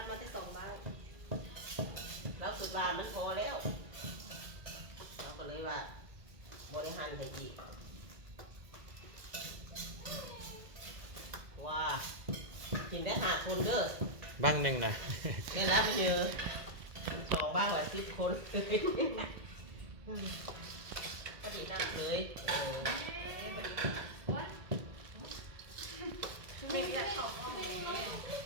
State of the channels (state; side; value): late; left; 2.0 ms